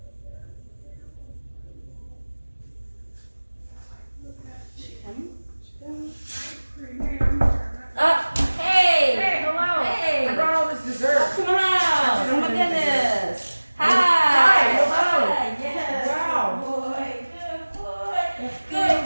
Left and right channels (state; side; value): inverted; both; correlation -1.00